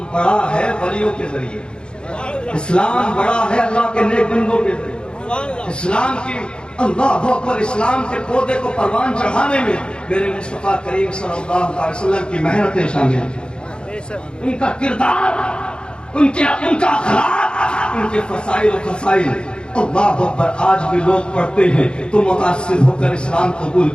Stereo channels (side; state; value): right; late; 0.052 ms